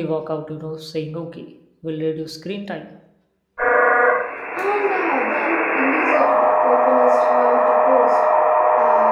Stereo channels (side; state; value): both; identical; correlation 1.00